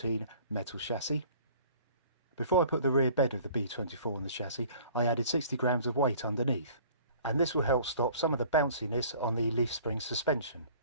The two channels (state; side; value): inverted; both; correlation -0.51